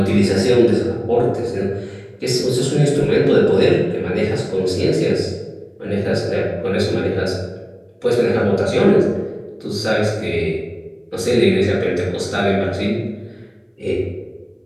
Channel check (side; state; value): both; identical; correlation 1.00